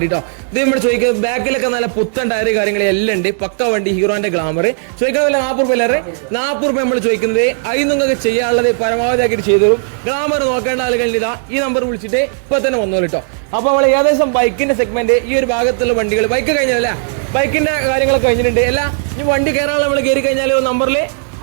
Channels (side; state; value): left; silent; digital silence